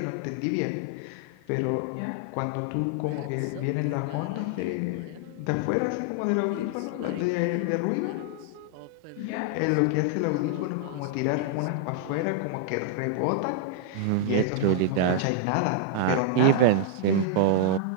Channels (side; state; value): both; different; correlation -0.01